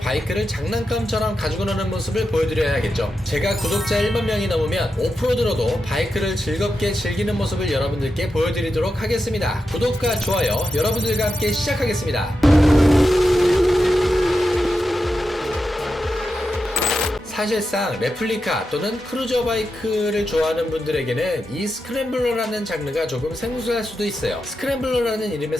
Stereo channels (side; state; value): both; normal; correlation 0.88